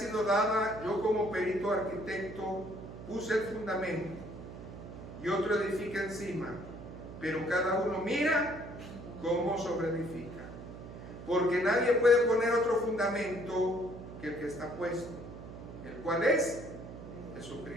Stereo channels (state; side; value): noise; right; hum, 12 dB below the sound